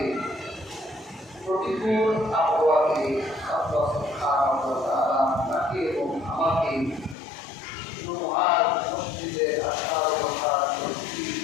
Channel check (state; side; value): drops out; right; at 7.2 s